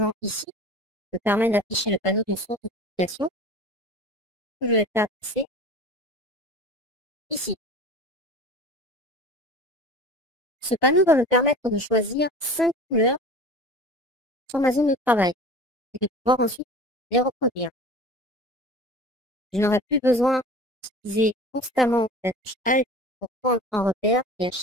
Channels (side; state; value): both; normal; correlation 0.38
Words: ici me permet d'afficher le panneau de source de publication que je vais faire passer ici. Ce panneau va me permettre de choisir 5 couleurs sur ma zone de travail et de pouvoir ensuite les reproduire. Je n'aurai plus besoin d'utiliser constamment la touche Alt pour prendre un repère et à